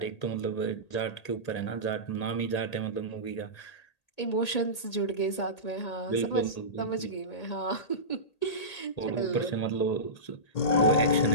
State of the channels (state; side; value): late; right; 1.8 ms